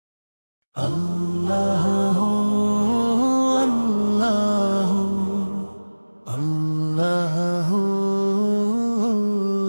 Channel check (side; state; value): both; inverted; correlation -1.00